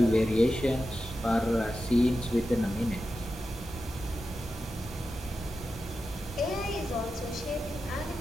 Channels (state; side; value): normal; both; correlation 0.91